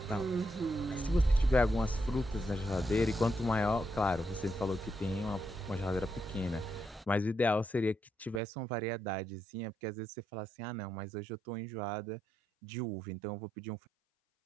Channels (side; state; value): left; drops out; at 8.4 s